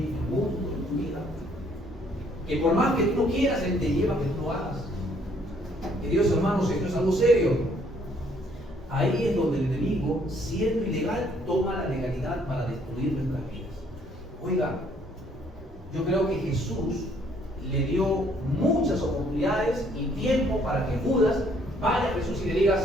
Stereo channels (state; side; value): normal; both; correlation 0.64